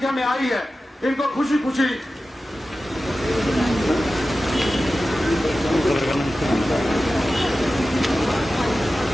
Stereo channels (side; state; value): both; normal; correlation 0.94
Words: में आई है, इनको खुशी खुशी